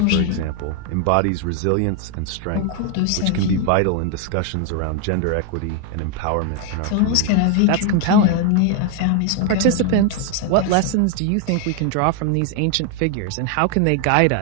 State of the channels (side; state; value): both; different; correlation 0.00